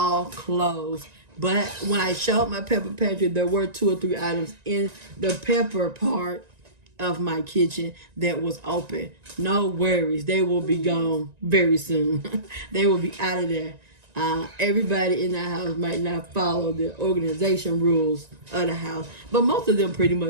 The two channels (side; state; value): left; late; 1.9 ms